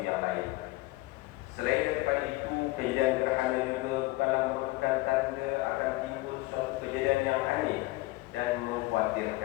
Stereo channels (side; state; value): right; quieter; 20.7 dB